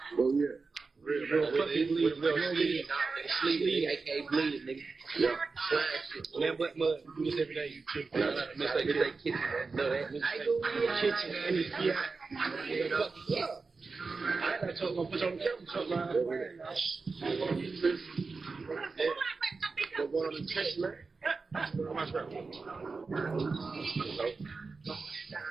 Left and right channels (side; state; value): left; quieter; 4.3 dB